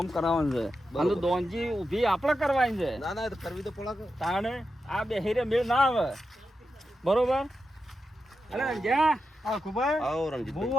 કરાવવાનું છે બરોબર. અને દોનજી ઊભી આપણે કરવાની છે ના ના એ તો કરવી તો પડે કે. તાણે આ બેહીરે મેળ ના આવે બરોબર અલે જ્યાં આ ખુબાઈ આવો રણજીત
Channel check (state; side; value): normal; both; correlation 0.88